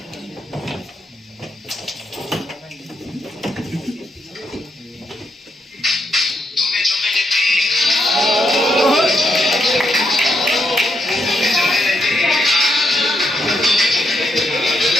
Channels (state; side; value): normal; both; correlation 0.79